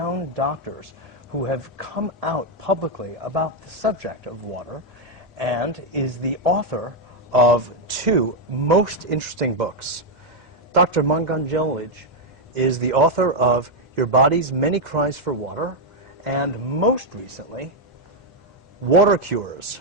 doctors who have come out publicly about the subject of water and is the author of two most interesting books. Dr. Batmanghelidj is the author of Your Body's Many Cries for Water, and most recently, Water Cures,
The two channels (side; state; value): both; normal; correlation 0.01